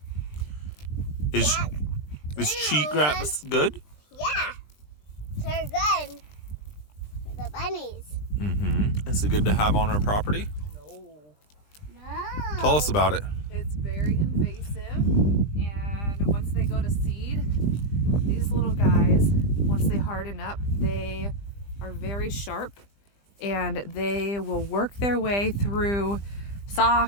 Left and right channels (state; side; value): late; right; 20 ms